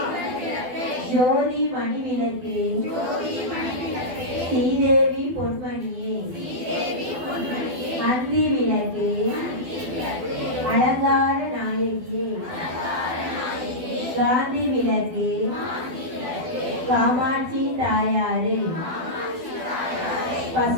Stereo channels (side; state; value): left; late; 12 ms